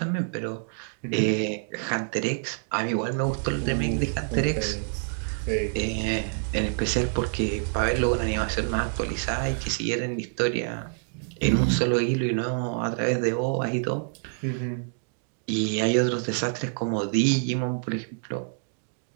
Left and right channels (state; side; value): silent; left; 60 dB below the other